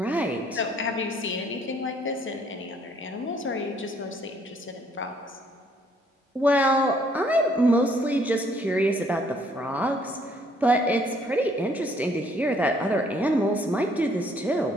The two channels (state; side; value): normal; both; correlation 0.64